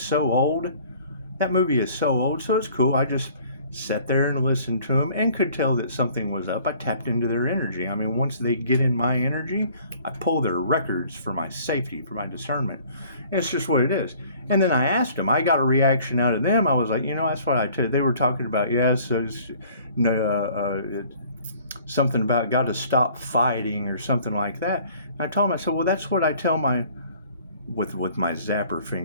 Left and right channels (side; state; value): both; inverted; correlation -0.54